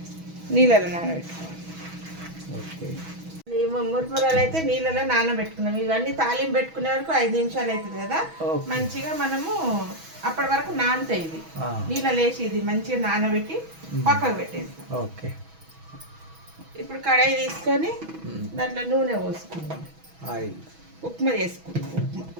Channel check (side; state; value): left; late; 6.2 ms